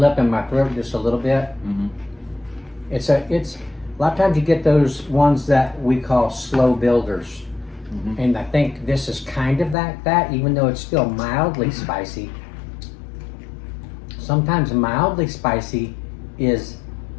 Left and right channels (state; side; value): drops out; right; at 9.8 s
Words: up in my throat just a little bit. It's a lot of times you get those ones that we call slow builders. And I think this is kind of that, even though it's still mildly spicy. Sometimes mildly spicy is